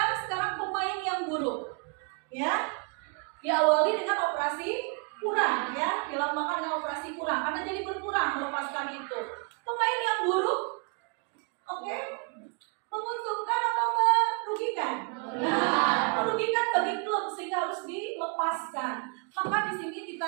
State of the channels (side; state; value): left; quieter; 35.5 dB